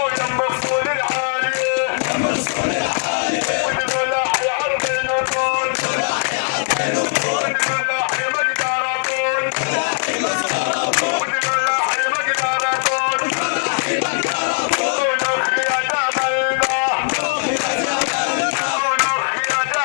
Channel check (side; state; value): right; silent; 66 dB below the other